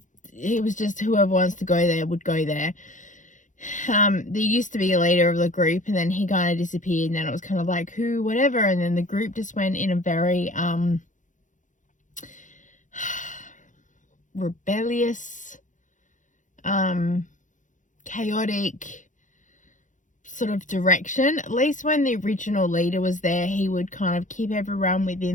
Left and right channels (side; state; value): right; late; 0.37 ms